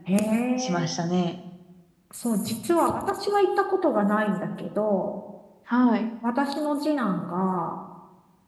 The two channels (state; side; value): identical; both; correlation 1.00